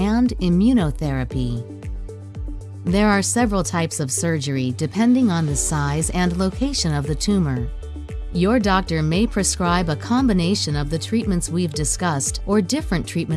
immunotherapy. There are several types of surgery depending on the size and location of the tumor. Your doctor may prescribe a combination of the treatments we've discussed or different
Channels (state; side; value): identical; both; correlation 1.00